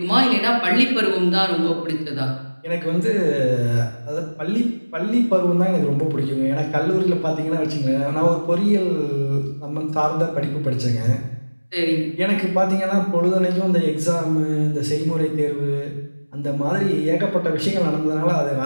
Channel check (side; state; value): both; inverted; correlation -1.00